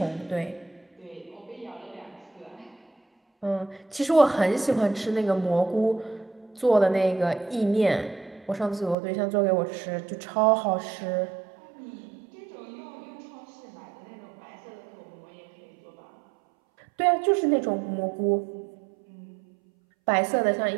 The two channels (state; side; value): drops out; left; at 9.0 s